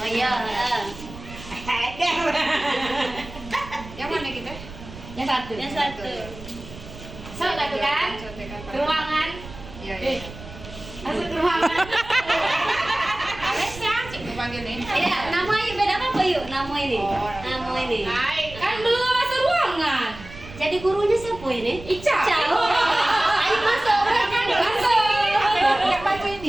iya. Yang mana kita? Yang satu. Satu kan? Ke ruangan. Iya. Masuk ke ruangan. Alesnya, cik gue panggil nih. Iya, nama yuk beda apa yuk? Nama ini. Nama ini. Hai, kan belum masuk ruangan. Jadi gurunya siapa ini? Ica. Ayo masuk. Masuk. Yang baca ini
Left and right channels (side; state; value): right; noise; rumble, 15 dB below the sound